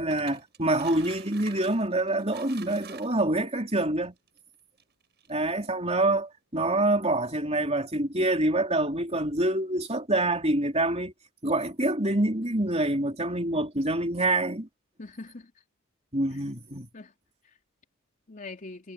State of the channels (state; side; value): normal; both; correlation 0.37